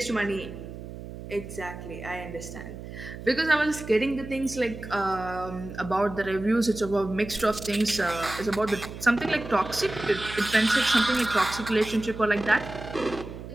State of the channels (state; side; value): noise; right; hum, 11 dB below the sound